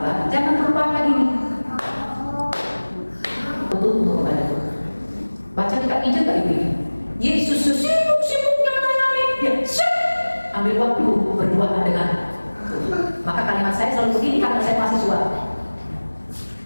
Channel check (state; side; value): inverted; both; correlation -1.00